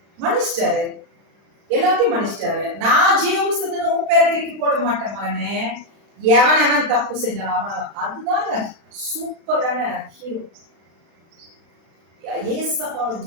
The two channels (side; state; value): left; late; 36 ms